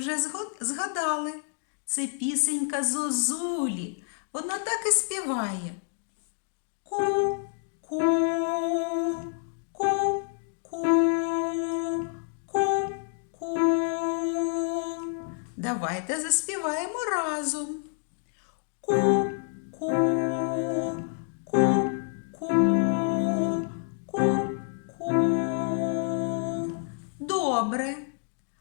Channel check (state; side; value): silent; right; 57 dB below the other